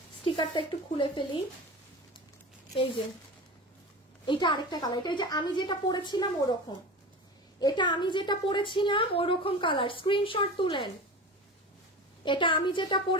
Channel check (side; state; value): both; normal; correlation 0.31